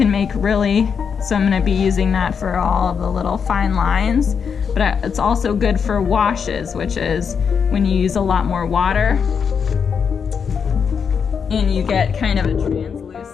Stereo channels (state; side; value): quieter; right; 6.6 dB